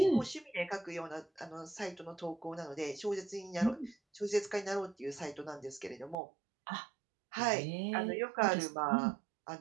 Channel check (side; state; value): left; drops out; at 6.2 s